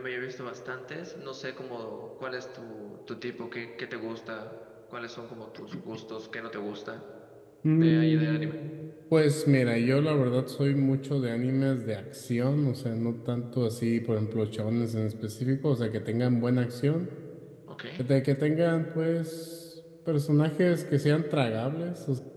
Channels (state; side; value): identical; both; correlation 1.00